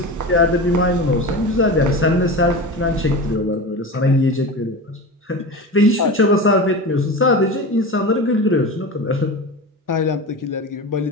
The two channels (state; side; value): normal; both; correlation 0.28